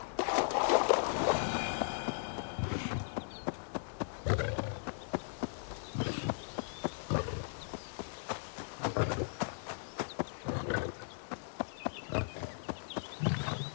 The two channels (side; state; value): right; silent; digital silence